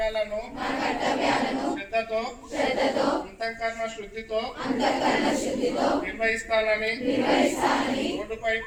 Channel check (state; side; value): identical; both; correlation 1.00